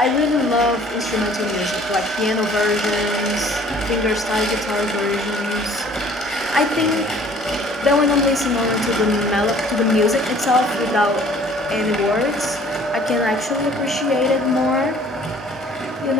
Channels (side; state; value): both; normal; correlation 0.54